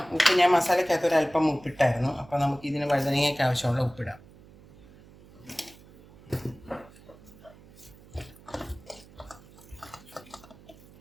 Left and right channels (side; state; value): right; noise; hum, 23 dB below the sound